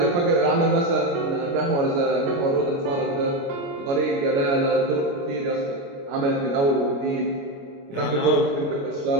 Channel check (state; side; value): late; left; 29 ms